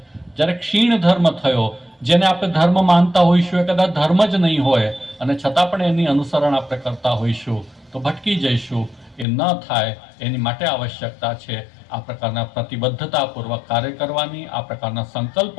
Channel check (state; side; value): drops out; right; at 9.2 s